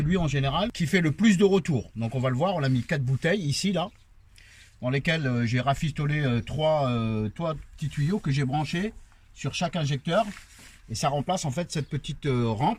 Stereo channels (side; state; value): both; identical; correlation 1.00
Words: en général qui fait le plus de retour. Donc on va le voir, on a mis 4 bouteilles ici, là, dans lesquelles j'ai rafistolé 3 petits tuyaux que j'ai branchés sur chaque injecteur. Et ça remplace en fait cette petite